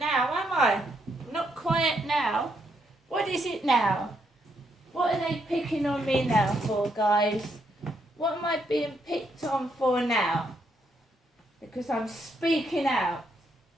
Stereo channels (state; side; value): normal; both; correlation 0.76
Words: now, am I? I'm not quiet now. What is it now? What are they picking on me now for, guys? What am I being picked on for now? Because I'm speaking out.